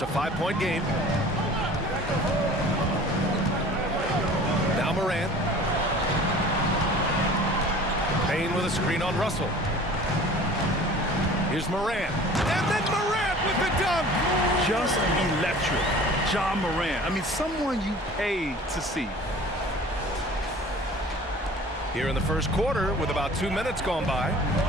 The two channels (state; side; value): normal; both; correlation 0.45